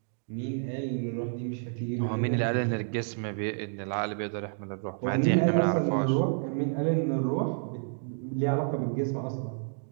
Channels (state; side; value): silent; left; digital silence